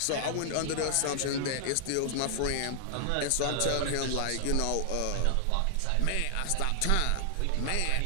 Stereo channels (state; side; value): different; both; correlation -0.01